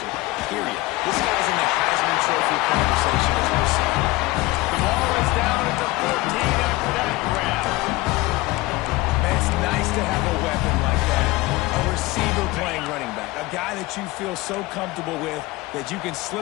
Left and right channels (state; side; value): quieter; right; 20.4 dB